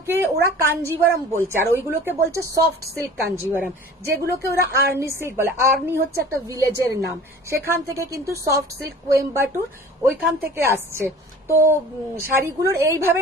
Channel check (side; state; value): both; normal; correlation 0.44